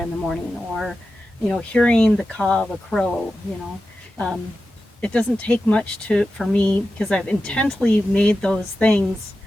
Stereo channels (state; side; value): normal; both; correlation 0.92